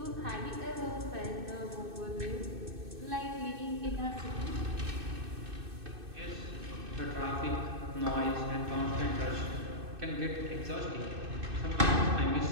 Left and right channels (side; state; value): left; late; 2.6 ms